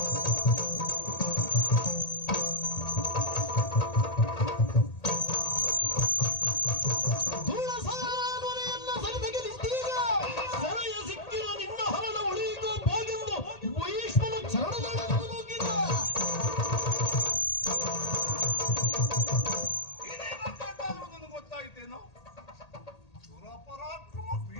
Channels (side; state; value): right; late; 1.8 ms